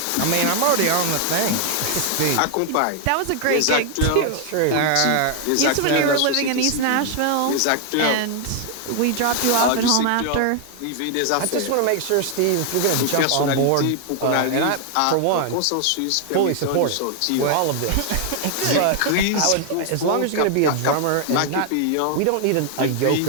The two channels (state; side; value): different; both; correlation 0.00